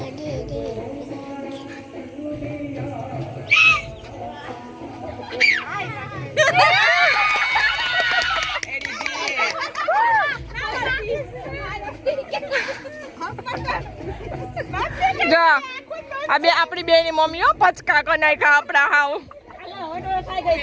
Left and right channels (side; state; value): both; identical; correlation 1.00